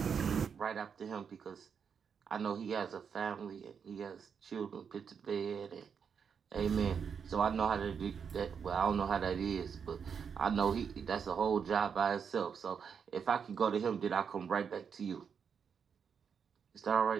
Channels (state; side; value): quieter; left; 6.7 dB